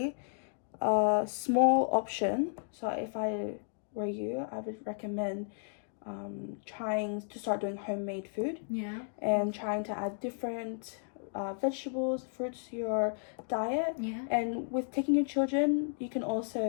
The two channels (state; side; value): silent; right; digital silence